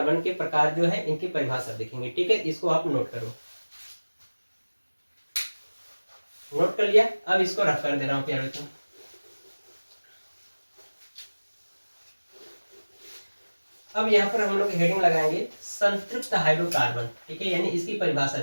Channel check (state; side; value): inverted; both; correlation -1.00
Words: के प्रकार जो है इनकी परिभाषा देखेंगे, ठीक है। इसको आप नोट करो। नोट कर लिया? अब इसको रफ कर दे रहा हूँ प्यारे बच्चों। अब यहाँ पर हम लोग हेडिंग लगाएंगे संतृप्त हाइड्रोकार्बन, ठीक है, यानी इसकी परिभाषा